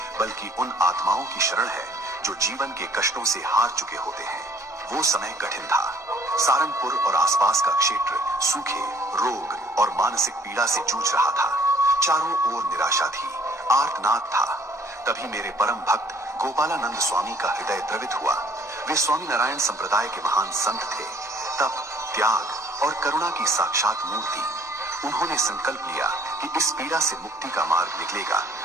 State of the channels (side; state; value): both; normal; correlation 0.58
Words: बल्कि उन आत्माओं की शरण है जो जीवन के कष्टों से हार चुके होते हैं। वो समय कठिन था। सारंगपुर और आसपास का क्षेत्र सूखे, रोग और मानसिक पीड़ा से जूझ रहा था। चारों ओर निराशा थी, आर्तनाद था। तभी मेरे परम भक्त गोपालानंद स्वामी का हृदय द्रवित हुआ। वे स्वामी नारायण संप्रदाय के महान संत थे, तप, त्याग और करुणा की साक्षात मूर्ति। उन्होंने संकल्प लिया कि इस पीड़ा से मुक्ति का मार्ग निकलेगा